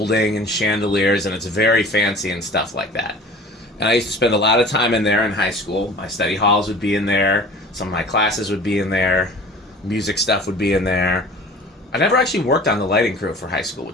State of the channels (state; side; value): normal; both; correlation 0.43